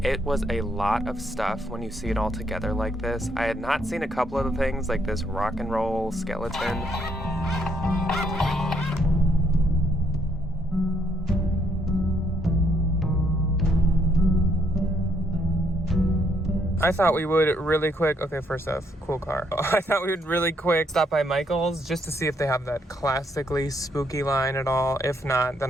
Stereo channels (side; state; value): both; normal; correlation 0.72